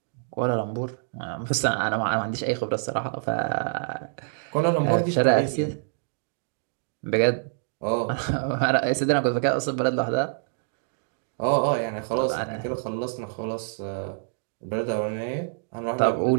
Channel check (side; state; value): left; silent; digital silence